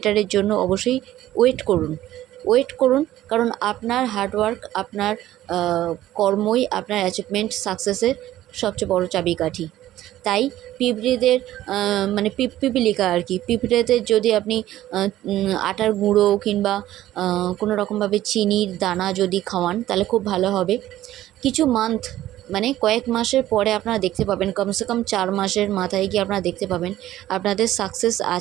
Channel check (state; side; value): quieter; left; 14.0 dB